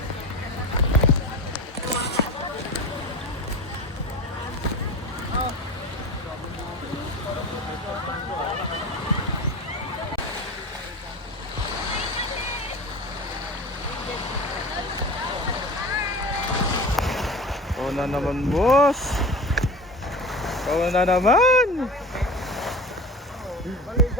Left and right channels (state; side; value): normal; both; correlation 0.32